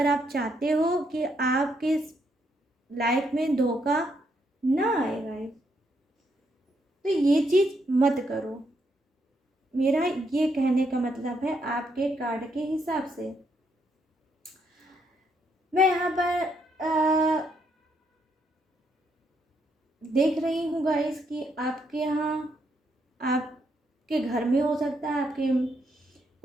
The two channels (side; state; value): both; normal; correlation 0.76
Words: आप चाहते हो कि आपके लाइफ में धोखा ना आएगा। तो ये चीज़ मत करो, मेरा ये कहने का मतलब है आपके कार्ड के हिसाब से। मैं यहाँ पर देख रही हूँ गाइस कि आपके यहाँ, आपके घर में हो सकता है, आपके